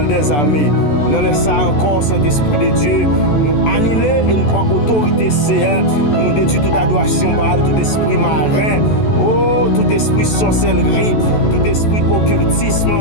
des armées. Nous laissons encore Saint-Esprit de Dieu nous annuler et nous prendre autorité Seigneur pour nous détruire toute adoration Baal, tout esprit marin, oh, tout esprit sorcellerie, tout esprit occultisme,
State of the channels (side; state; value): right; late; 14 ms